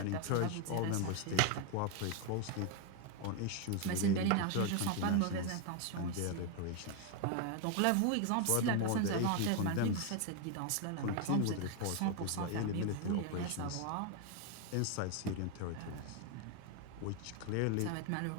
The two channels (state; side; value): different; both; correlation 0.01